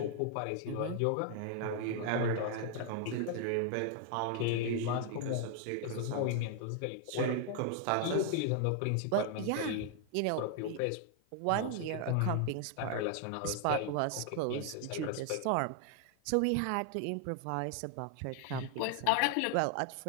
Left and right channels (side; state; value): both; different; correlation 0.00